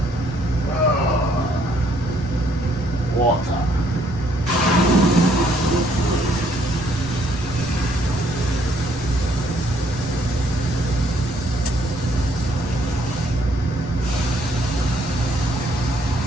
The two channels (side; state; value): left; noise; rumble, 14 dB below the sound